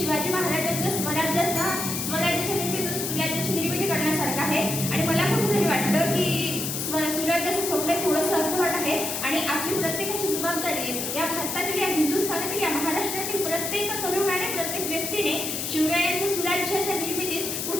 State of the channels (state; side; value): noise; left; hiss, 3 dB below the sound